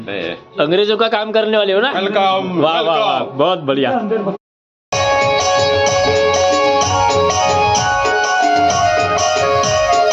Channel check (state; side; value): identical; both; correlation 1.00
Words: अंग्रेजों का काम करने वाले हो ना? वेलकम. वाह वाह वाह, बहुत बढ़िया.